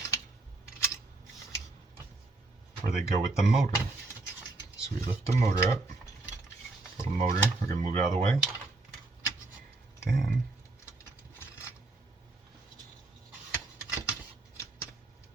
where they go with the motor. So we lift the motor up, little motor, we're going to move it out of the way. Then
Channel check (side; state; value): left; quieter; 3.1 dB